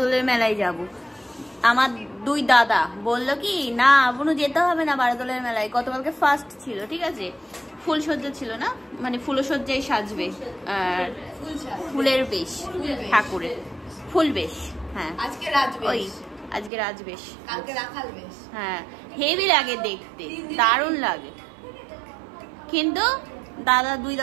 মেলায় যাব। আমার 2 দাদা বললো কি না আপনি যেতে হবে না বারদোলের মেলায়। গতকালকে ফার্স্ট ছিল, ঠিক আছে, ফুলসজ্জা ছিল না, মানে ফুলসজ্জায় সাজবে, ফুলের বেশ, ঠাকুরের ফুল বেশ। হ্যাঁ আজকে রাজবেশ, ওই আজকে রাজবেশ, কালকে রাখাল বেশ। হ্যাঁ হেভি লাগে দেখতে, দারুণ লাগে। কিন্তু 2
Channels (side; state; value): left; drops out; at 16.7 s